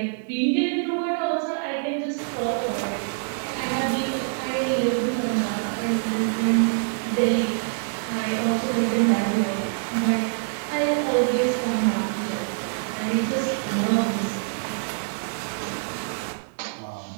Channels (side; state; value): left; silent; digital silence